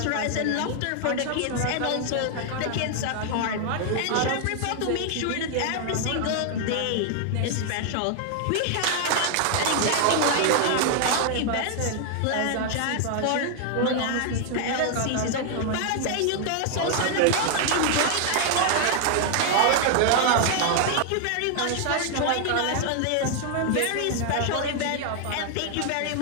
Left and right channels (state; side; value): different; both; correlation 0.00